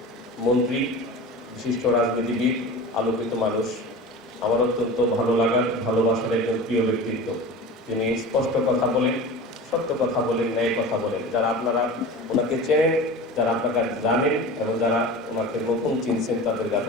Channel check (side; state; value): both; normal; correlation 0.33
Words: মন্ত্রী, বিশিষ্ট রাজনীতিবিদ, আলোকিত মানুষ, আমার অত্যন্ত ভালো লাগার ভালোবাসার একজন প্রিয় ব্যক্তিত্ব, যিনি স্পষ্ট কথা বলেন, সত্য কথা বলেন, ন্যায় কথা বলেন। যারা আপনারা ওনাকে চেনেন, যারা আপনাকে জানেন এবং যারা ওনাকে নতুন চিনছেন, তাদের